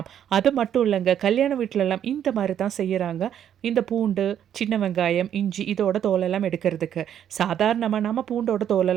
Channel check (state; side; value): quieter; left; 9.7 dB